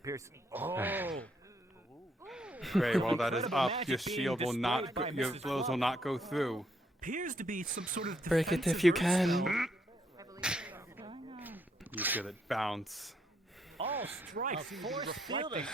Oh. Frey, while that is Incredible up, magic your being shield will not, displayed by your Mrs. blows will not go through. Appears to be some sort of Break it if defensive you earth can. You feel it bounce. All strikes force fielding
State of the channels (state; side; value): normal; both; correlation 0.73